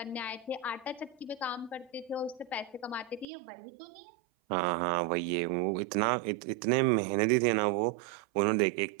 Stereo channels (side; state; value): left; drops out; at 3.2 s